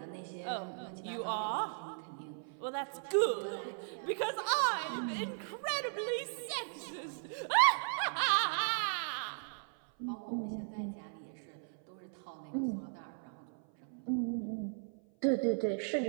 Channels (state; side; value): silent; left; 53 dB below the other